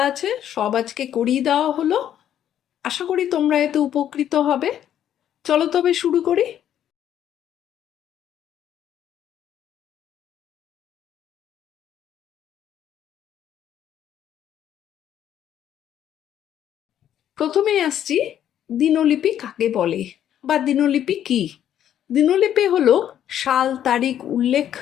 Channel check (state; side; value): quieter; right; 10.5 dB